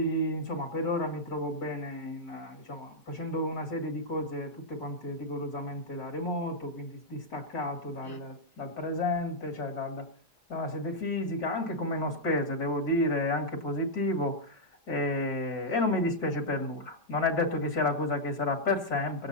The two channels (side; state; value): both; normal; correlation -0.05